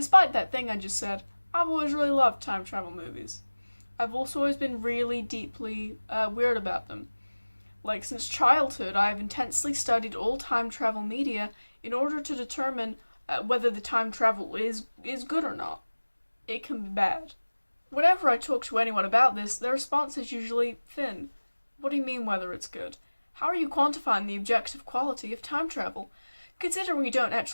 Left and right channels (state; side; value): inverted; both; correlation -1.00